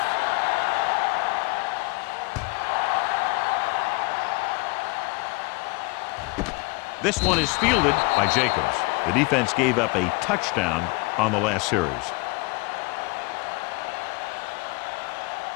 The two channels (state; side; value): quieter; right; 27.1 dB